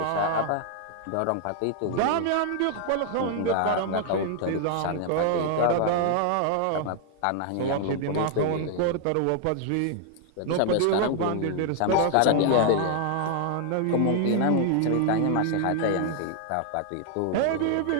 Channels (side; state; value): both; different; correlation 0.00